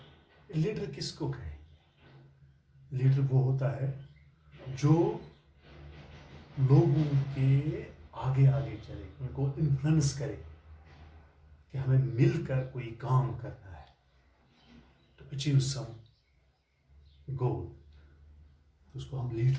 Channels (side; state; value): both; identical; correlation 1.00